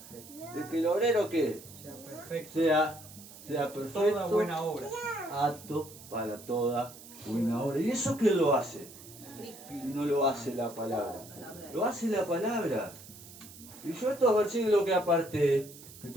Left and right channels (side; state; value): right; noise; hiss, 18 dB below the sound